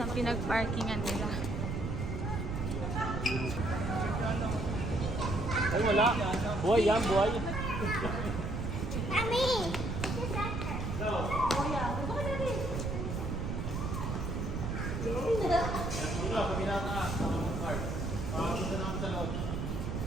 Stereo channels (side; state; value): right; noise; rumble, 2 dB below the sound